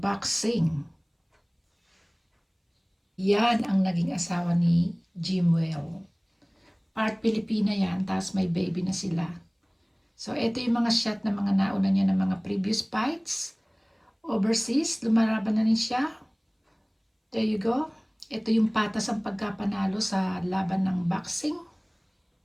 Yan ang naging asawa ni Jimwell. Part Pilipina yan, tapos may baby na sila. So, ito yung mga shot na mga nauna niya ng mga previous fights. Overseas, lumalaban na rin siya. There you go. Ito yung patas ang pagkapanalo sa laban ng boxing.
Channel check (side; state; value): both; identical; correlation 1.00